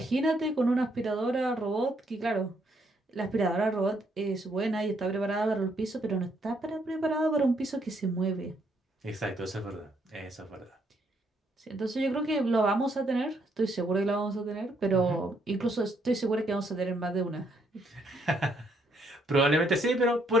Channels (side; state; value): both; normal; correlation 0.72